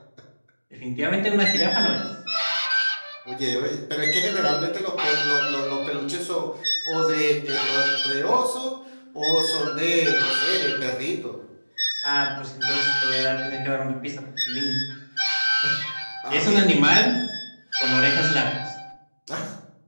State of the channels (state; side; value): inverted; both; correlation -1.00